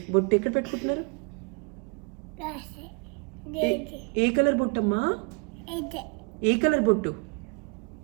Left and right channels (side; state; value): left; quieter; 34.7 dB